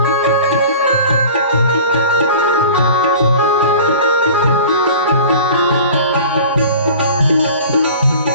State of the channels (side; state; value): both; inverted; correlation -0.41